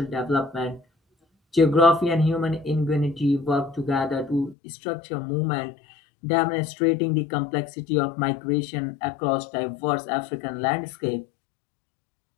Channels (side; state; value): right; drops out; at 4.5 s